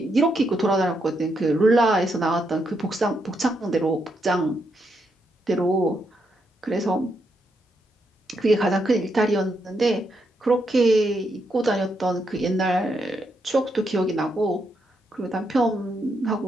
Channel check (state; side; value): normal; both; correlation 0.80